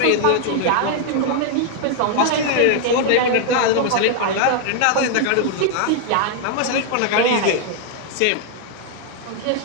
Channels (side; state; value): both; different; correlation 0.00